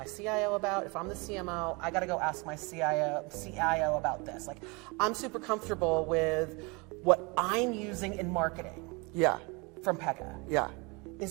CIO about? If I'm the CMO, I got to go ask my CIO about this. Like, I'm super comfortable with what I'm using in marketing Yeah. from Pega. Yeah.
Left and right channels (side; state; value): left; quieter; 28.3 dB